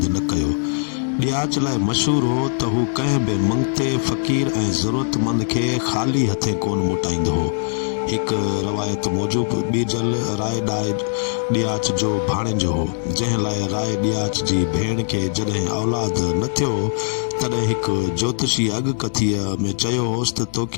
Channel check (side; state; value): right; silent; digital silence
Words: न कयो। ॾियाच लाइ मशहूर हो त हू कंहिं बि मंगते फ़क़ीर ऐं ज़रूरतमंद खे ख़ाली हथे कोन मोटाईंदो हो। हिकु रवायत मूजिबि ॿीजल राय ॾियाच जो भाणेजो हो, जंहिं लाइ राय ॾियाच जी भेण खे जॾहिं औलाद न थियो तॾहिं हिकु ज्योतिषी अॻकथीअ में चयो होसि त